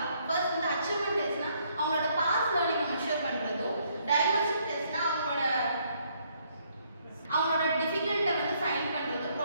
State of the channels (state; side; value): inverted; both; correlation -0.69